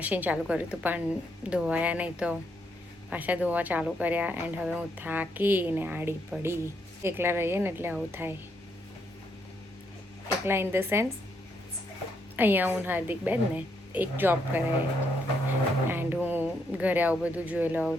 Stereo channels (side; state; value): both; normal; correlation 0.76